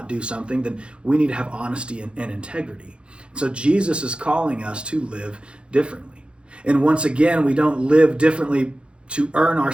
do something, then we need to have honesty and integrity. So Jesus is calling us to live differently. And once again, we don't live differently to earn our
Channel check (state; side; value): late; left; 0.057 ms